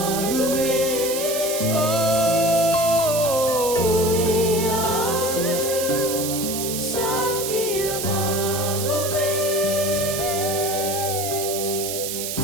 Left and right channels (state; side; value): noise; right; hiss, 4 dB below the sound